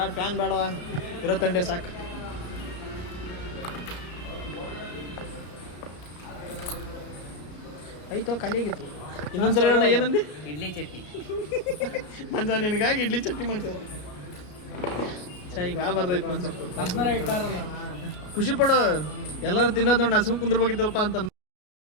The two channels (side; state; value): right; late; 33 ms